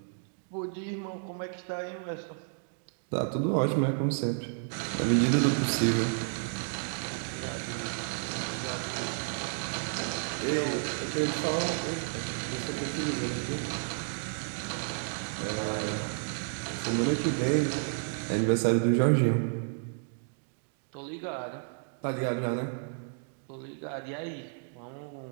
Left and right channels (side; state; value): left; silent; 57 dB below the other